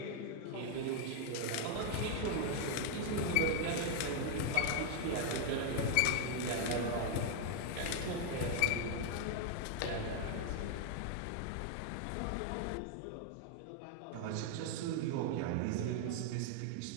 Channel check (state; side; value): different; both; correlation 0.00